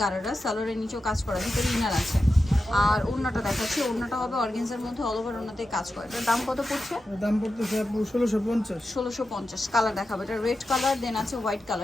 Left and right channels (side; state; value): both; normal; correlation 0.90